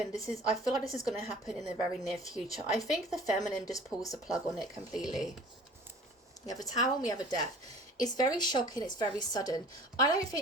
I feel like this is going to happen in the very near future. I think the feminine just pulls the plug on it completely. We have a Tower and we have a Death. It's very shocking, it's very sudden. I don't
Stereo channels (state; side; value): normal; both; correlation 0.46